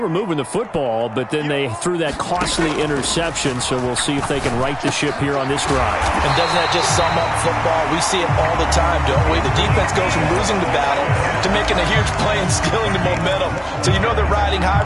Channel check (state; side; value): identical; both; correlation 1.00